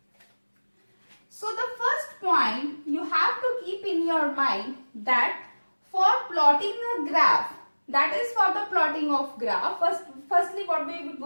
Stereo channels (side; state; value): both; inverted; correlation -1.00